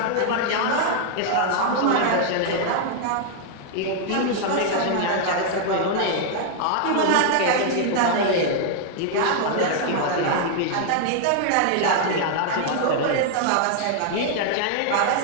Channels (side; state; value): both; different; correlation 0.00